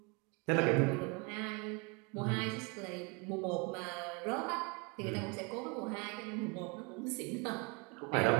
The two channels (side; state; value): left; quieter; 30.2 dB